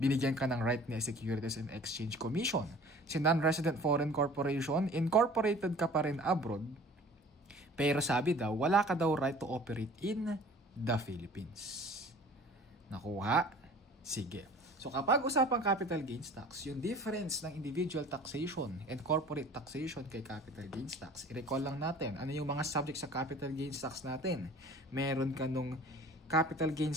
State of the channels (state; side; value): normal; both; correlation 0.47